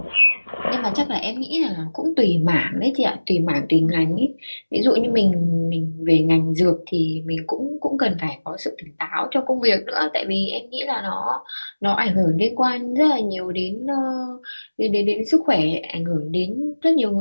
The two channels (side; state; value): both; inverted; correlation -1.00